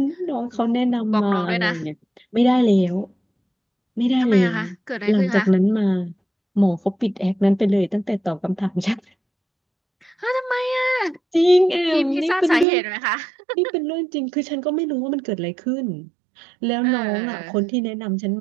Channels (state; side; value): drops out; left; at 12.7 s